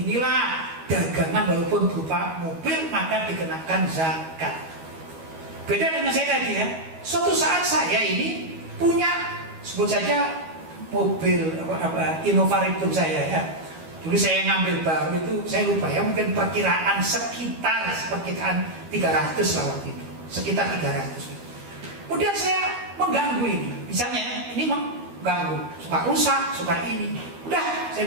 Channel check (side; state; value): left; late; 12 ms